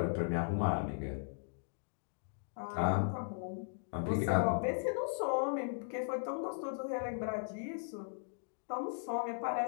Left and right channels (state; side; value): silent; right; digital silence